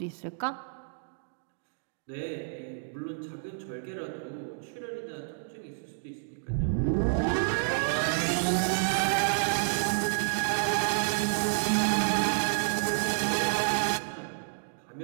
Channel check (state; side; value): silent; left; digital silence